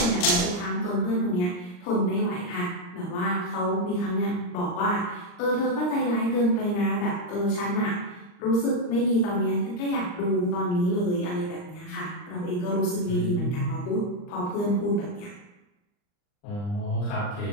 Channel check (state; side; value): late; right; 39 ms